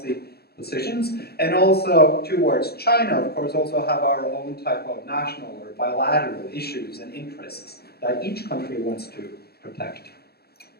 positions, and also towards China, of course, also have our own type of national or bilateral issues and interests that each country wants to protect.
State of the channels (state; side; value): late; right; 0.46 ms